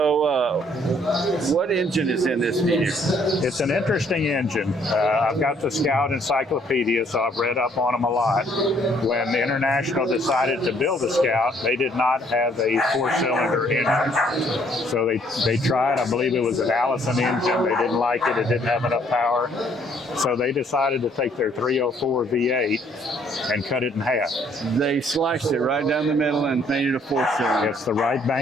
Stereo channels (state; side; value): normal; both; correlation 0.64